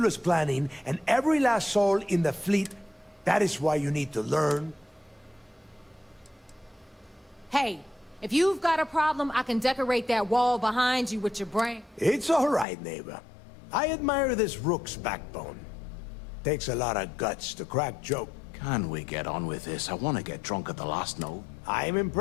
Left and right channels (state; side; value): drops out; right; at 12.7 s